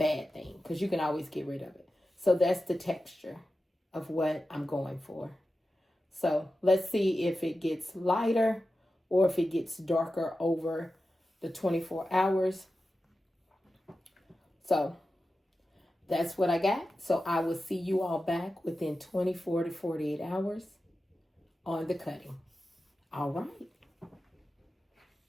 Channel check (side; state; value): both; normal; correlation 0.93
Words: thing, because you can always get rid of it. So that's the texture of what I'm going for. So let's see if it gets lighter or if it gets darker over the 24 hours. So that's what I got. So I will see you all back within 24 to 48 hours on the cutting. All right.